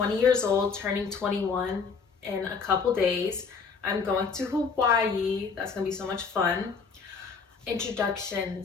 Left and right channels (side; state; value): right; quieter; 5.3 dB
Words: years old, turning 21 in a couple days. I'm going to Hawaii. That's gonna be so much fun.